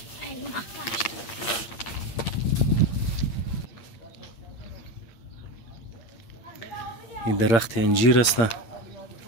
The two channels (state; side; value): late; right; 8.8 ms